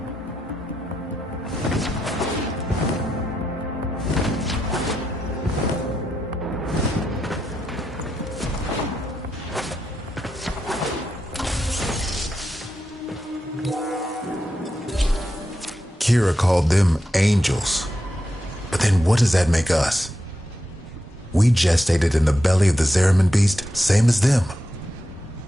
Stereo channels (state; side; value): normal; both; correlation 0.86